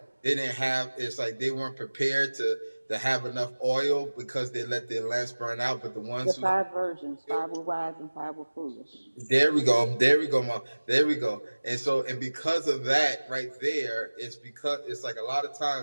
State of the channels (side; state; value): both; inverted; correlation -1.00